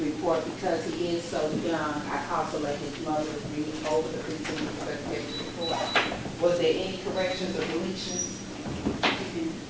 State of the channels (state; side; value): identical; both; correlation 1.00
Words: report because he is so young. I also let his mother read over the pre-sentence investigation report. Was there any corrections or deletions?